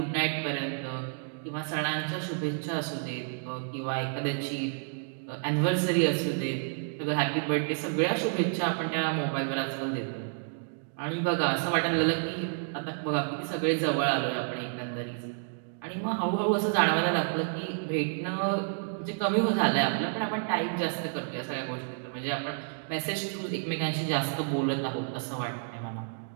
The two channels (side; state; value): left; silent; digital silence